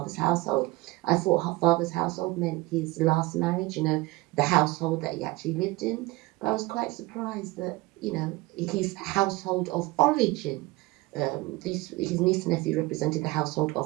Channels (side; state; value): left; quieter; 20.9 dB